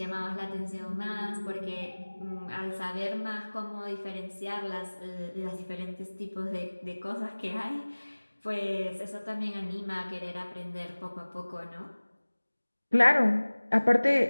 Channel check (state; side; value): inverted; both; correlation -1.00